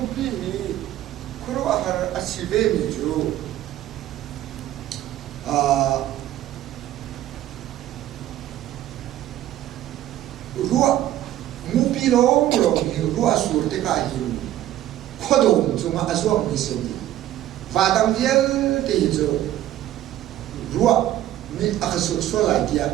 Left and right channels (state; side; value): quieter; left; 13.2 dB